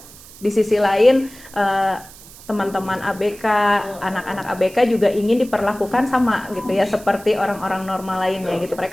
di sisi lain teman-teman ABK, anak-anak ABK juga ingin diperlakukan sama gitu ya, seperti orang-orang normal lainnya gitu.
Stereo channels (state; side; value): noise; right; hiss, 20 dB below the sound